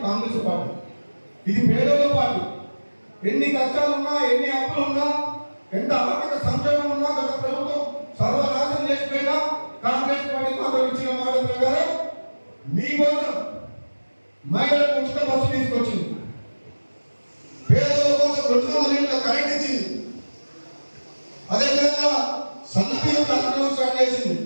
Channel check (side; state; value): both; inverted; correlation -1.00